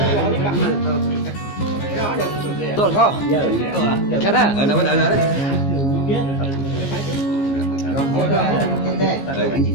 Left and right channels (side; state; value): right; late; 15 ms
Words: tốt không? Cái đó đâu có đấy.